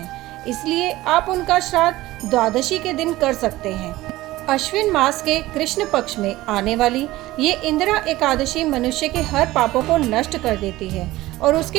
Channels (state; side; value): quieter; left; 17.4 dB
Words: इसलिए आप उनका श्राद्ध द्वादशी के दिन कर सकते हैं। अश्विन मास के कृष्ण पक्ष में आने वाली ये इंदिरा एकादशी मनुष्य के हर पापों को नष्ट कर देती है और